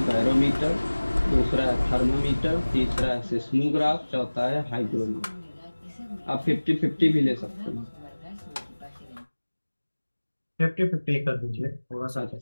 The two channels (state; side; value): inverted; both; correlation -1.00